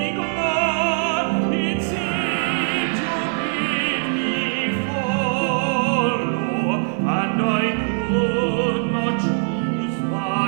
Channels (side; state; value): left; silent; digital silence